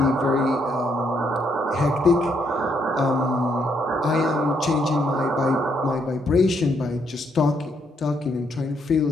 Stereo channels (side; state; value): both; normal; correlation 0.74